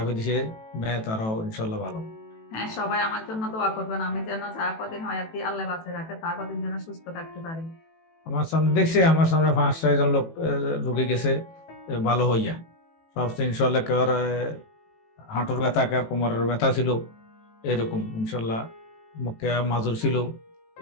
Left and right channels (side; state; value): right; late; 18 ms